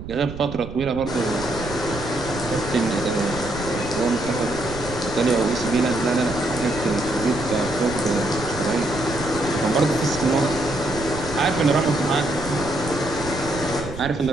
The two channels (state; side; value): noise; right; rumble, 11 dB below the sound